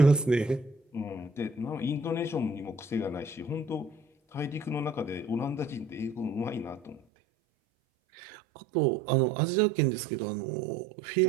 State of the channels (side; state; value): left; drops out; at 7.0 s